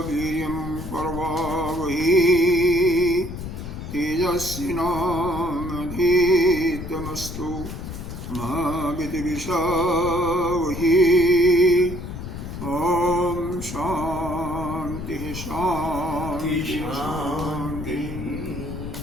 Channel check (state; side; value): noise; left; rumble, 8 dB below the sound